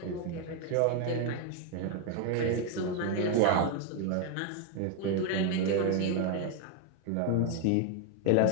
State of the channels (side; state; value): both; different; correlation 0.01